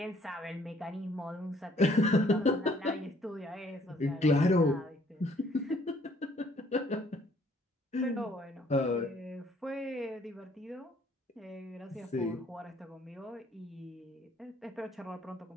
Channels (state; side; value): normal; both; correlation 0.62